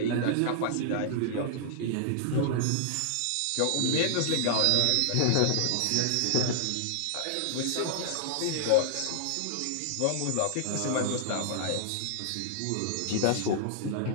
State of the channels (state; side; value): different; both; correlation -0.01